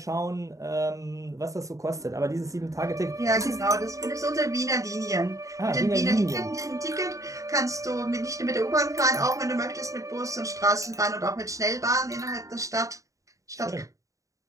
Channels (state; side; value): late; left; 0.16 ms